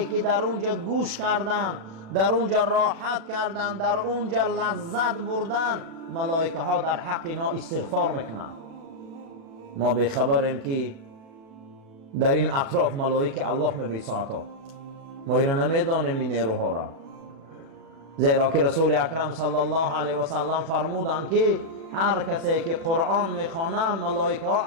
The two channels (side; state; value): left; late; 36 ms